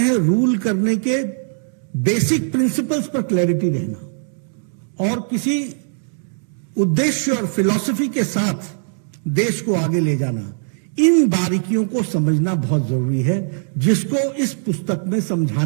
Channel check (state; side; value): silent; left; digital silence